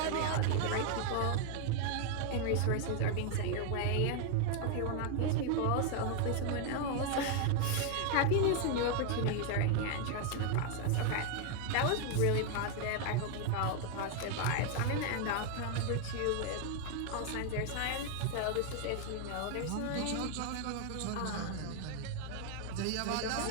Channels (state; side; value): different; both; correlation 0.01